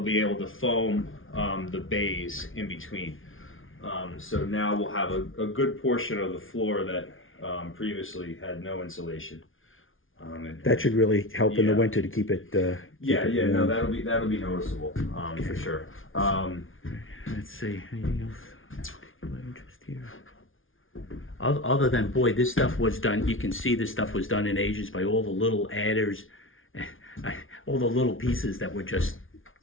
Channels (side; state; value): right; late; 0.58 ms